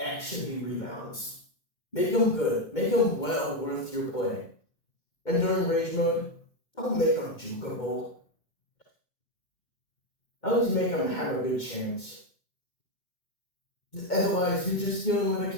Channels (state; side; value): late; right; 2.2 ms